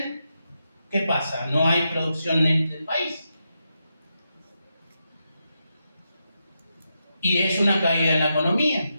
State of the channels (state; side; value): inverted; both; correlation -0.85